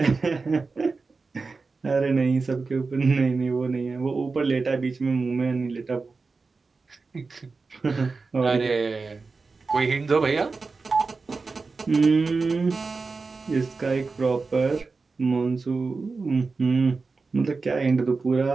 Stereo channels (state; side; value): quieter; left; 4.2 dB